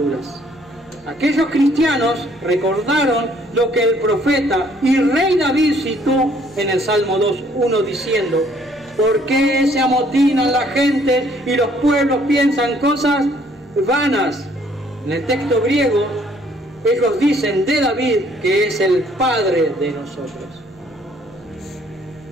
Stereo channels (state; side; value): normal; both; correlation 0.63